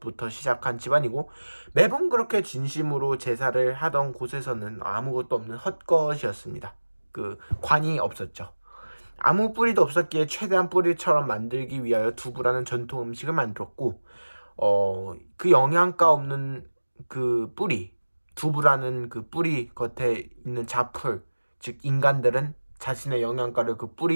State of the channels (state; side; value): inverted; both; correlation -1.00